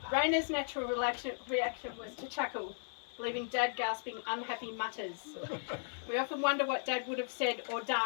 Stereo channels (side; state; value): right; silent; digital silence